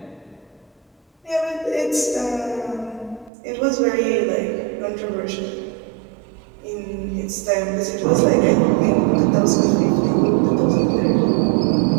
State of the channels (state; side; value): drops out; left; at 3.3 s